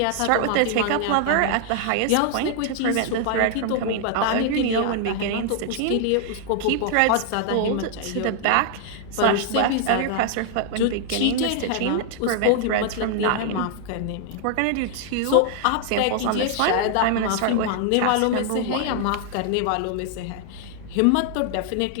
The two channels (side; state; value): both; different; correlation 0.00